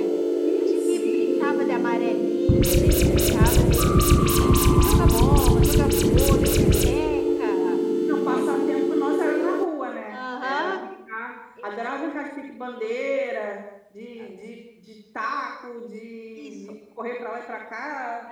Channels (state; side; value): identical; both; correlation 1.00